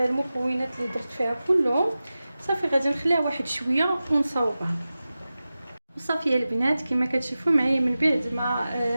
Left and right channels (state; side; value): inverted; both; correlation -0.95